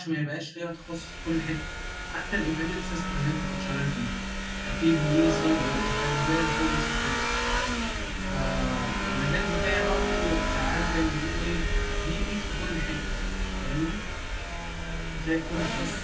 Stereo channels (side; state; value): both; identical; correlation 1.00